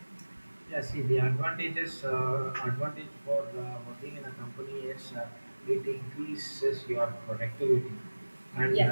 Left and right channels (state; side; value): inverted; both; correlation -1.00